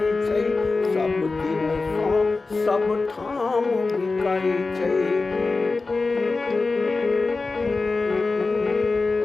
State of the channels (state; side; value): quieter; right; 3.8 dB